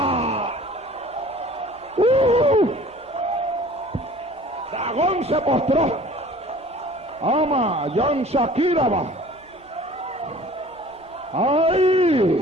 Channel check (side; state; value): both; normal; correlation 0.48